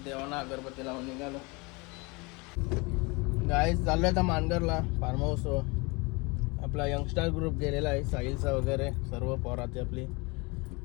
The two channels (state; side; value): quieter; right; 27.1 dB